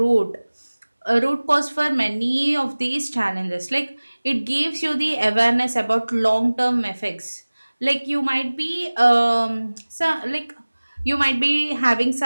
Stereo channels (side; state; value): both; inverted; correlation -1.00